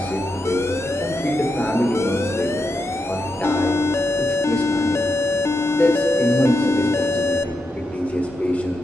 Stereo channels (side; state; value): both; normal; correlation 0.85